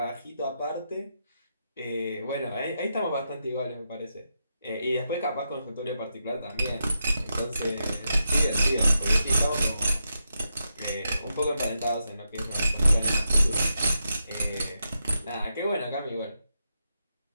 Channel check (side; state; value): both; inverted; correlation -0.85